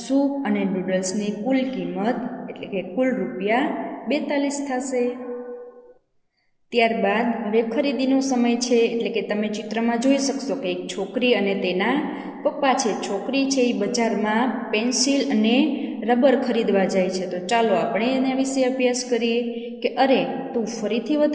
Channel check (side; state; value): both; identical; correlation 1.00